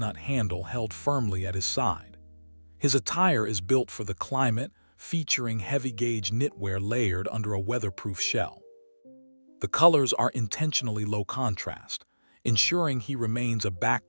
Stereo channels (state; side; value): inverted; both; correlation -1.00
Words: handle held firmly at his side. His attire is built for the climate, featuring heavy-gauge knitwear layered under a weatherproof shell. The colors are intentionally low contrast, ensuring he remains a